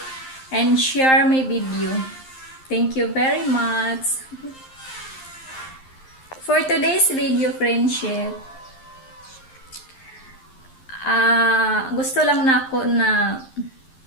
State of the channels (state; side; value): late; right; 11 ms